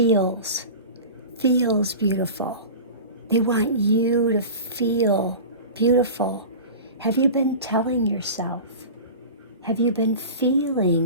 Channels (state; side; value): inverted; both; correlation -0.33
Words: beautiful. They want you to feel beautiful. Have you been telling yourself? Have you been